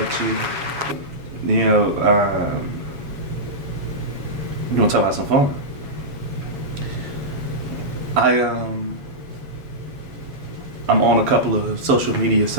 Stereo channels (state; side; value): late; left; 7.2 ms